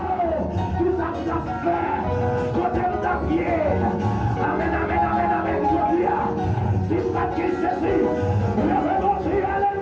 tout ça vous a fait. Côté de ta pied. Amen. C'est pas que Jésus. Levez mon cri,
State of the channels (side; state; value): both; identical; correlation 1.00